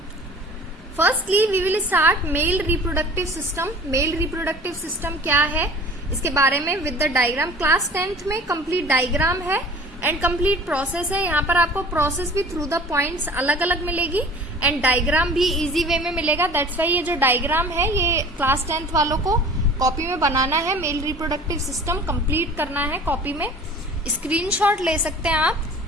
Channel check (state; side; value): normal; both; correlation 0.45